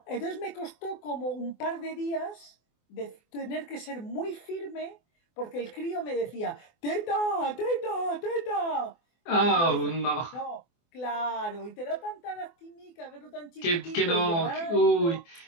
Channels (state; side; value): late; right; 24 ms